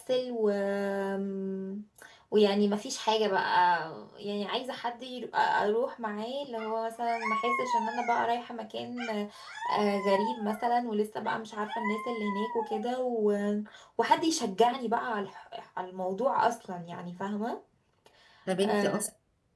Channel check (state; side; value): identical; both; correlation 1.00